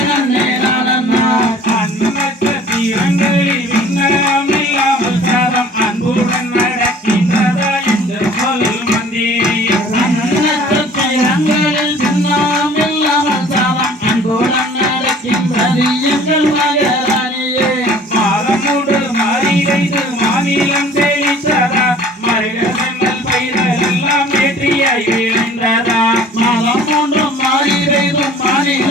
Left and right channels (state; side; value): normal; both; correlation 0.50